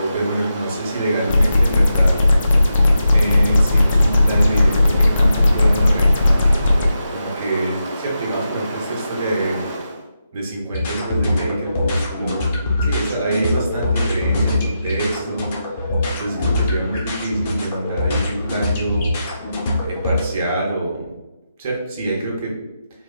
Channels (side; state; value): both; inverted; correlation -0.86